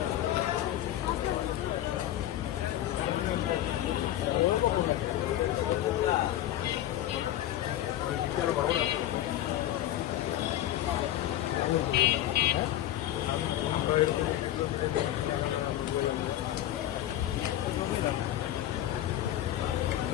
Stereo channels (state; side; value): quieter; right; 13.0 dB